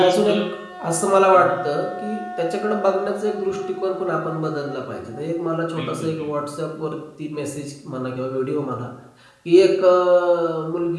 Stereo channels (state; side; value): identical; both; correlation 1.00